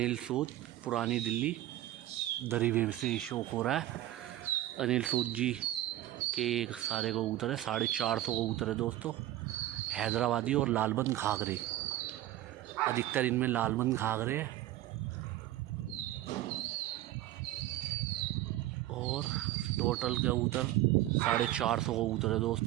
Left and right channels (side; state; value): left; quieter; 14.7 dB